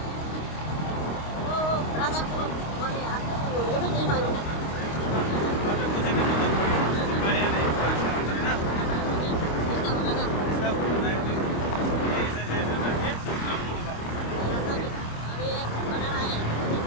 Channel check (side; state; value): right; late; 26 ms